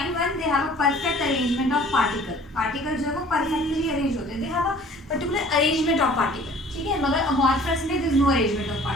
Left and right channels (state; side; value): normal; both; correlation 0.50